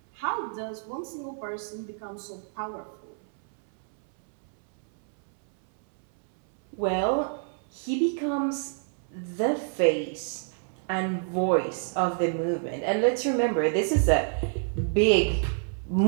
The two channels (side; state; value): left; silent; 60 dB below the other